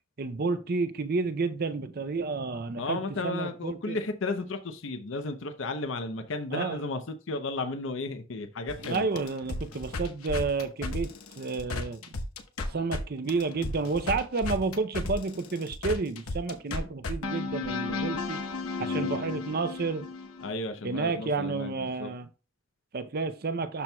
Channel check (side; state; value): both; normal; correlation 0.24